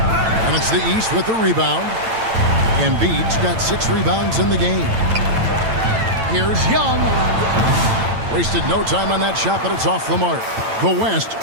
And it's the East with the rebound. Embiid's got 6 rebounds in the game. Here's Young. Wasted no time on that shot, but it's off the mark. The West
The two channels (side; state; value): left; late; 8.9 ms